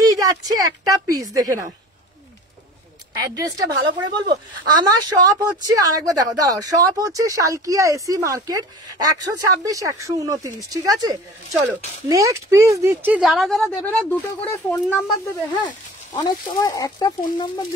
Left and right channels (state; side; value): normal; both; correlation 0.40